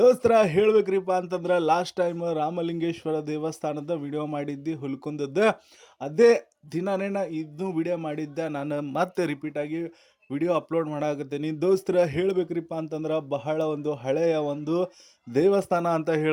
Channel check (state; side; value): identical; both; correlation 1.00